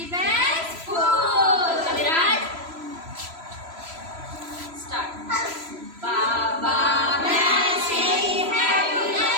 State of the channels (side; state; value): left; late; 3.0 ms